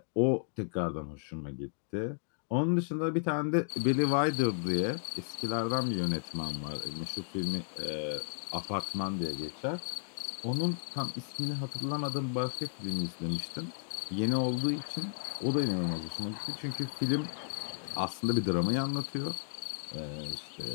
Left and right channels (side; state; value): right; silent; digital silence